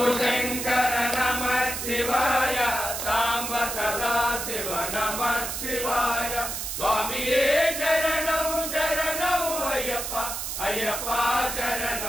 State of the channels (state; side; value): noise; right; hiss, 4 dB below the sound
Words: शंकर नमः शिवाय सांब सदा शिव नमः शिवाय स्वामिये शरणं शरणं अय्यप्पा अय्यप्पा